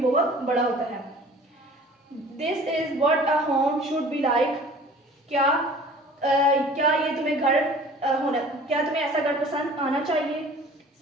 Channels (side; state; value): both; normal; correlation 0.47